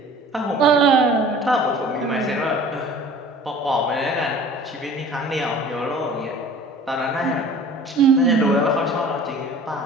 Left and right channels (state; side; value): normal; both; correlation 0.46